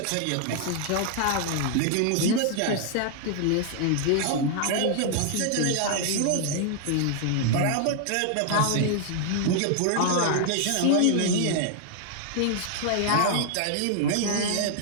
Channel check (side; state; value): both; different; correlation -0.01